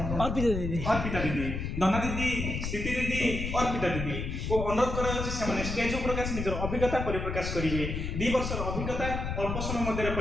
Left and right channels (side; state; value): left; noise; rumble, 3 dB below the sound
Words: अर्पिता दीदी दना दीदी स्थिति दीदी अर्पिता दीदी को अनुरोध कराଯାଉଛି ସେମାନେ ଷ୍ଟେଜ ଉପରେ ଆସି ନିଜର ଅଭିଜ୍ଞତା ପରିପ୍ରକାଶ କରିବେ। 2 ବର୍ଷର ଅଭିଜ୍ଞତା ଅଳ୍ପ ସମୟ ମଧ୍ୟରେ